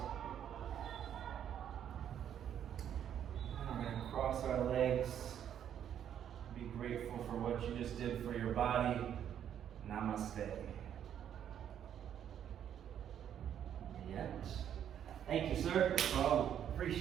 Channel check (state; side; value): quieter; left; 9.6 dB